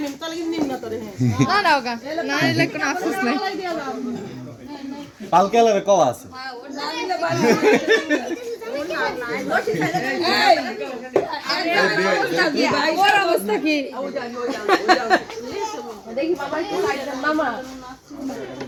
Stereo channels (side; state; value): both; identical; correlation 1.00